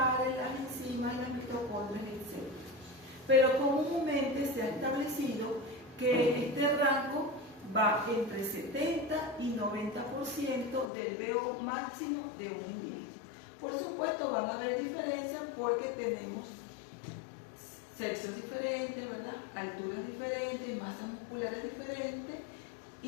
las enzimas, las mitocondrias, etc. Pero comúnmente se ha establecido que este rango va entre 70 y 90% del VO máximo de un individuo. Por supuesto van a haber diferencias porque tenemos sexos diferentes, ¿verdad? Alturas diferentes, masas musculares diferentes,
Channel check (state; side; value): drops out; right; at 10.9 s